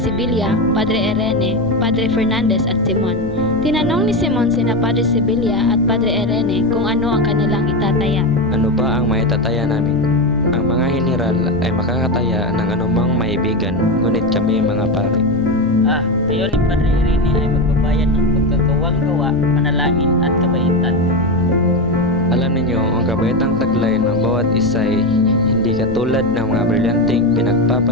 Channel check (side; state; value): left; noise; rumble, 13 dB below the sound